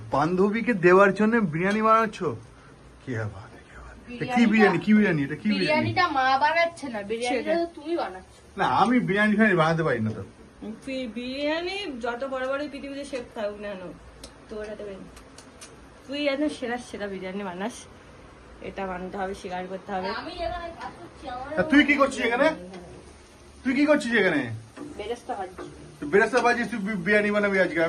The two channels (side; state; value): both; identical; correlation 1.00